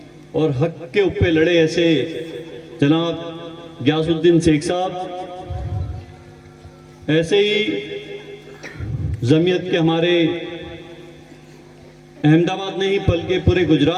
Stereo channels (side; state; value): both; identical; correlation 1.00